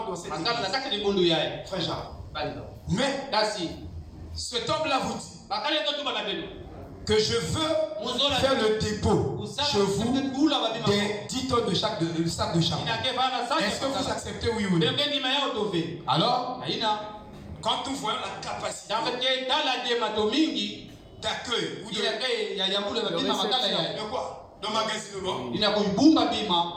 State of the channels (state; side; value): identical; both; correlation 1.00